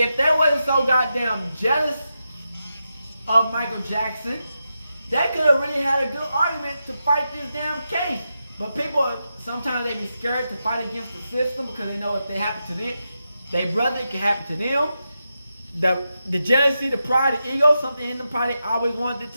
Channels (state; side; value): inverted; both; correlation -0.88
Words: they wasn't so goddamn jealous of Michael Jackson, they could have really had a good argument to fight this damn case. But people, sometimes they be scared to fight against the system because they know if they happen to them, their brother, it can happen to them. The jealousy, the pride, the ego, something in them probably always wanted it